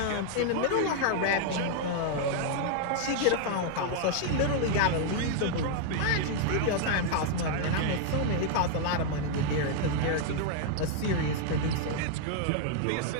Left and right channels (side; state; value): both; different; correlation 0.00